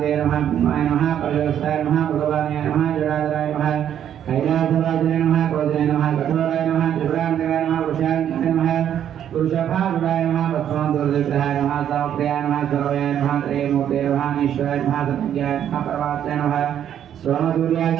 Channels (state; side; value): quieter; left; 9.9 dB